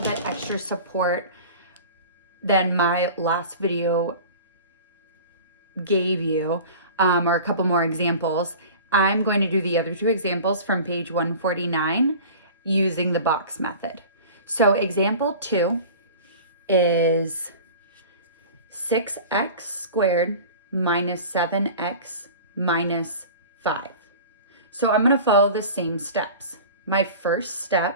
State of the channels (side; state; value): both; inverted; correlation -0.39